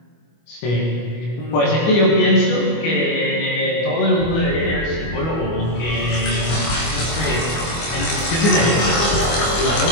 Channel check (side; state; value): right; late; 25 ms